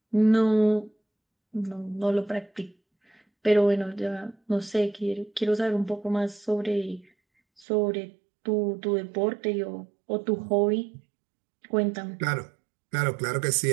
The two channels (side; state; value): left; drops out; at 7.7 s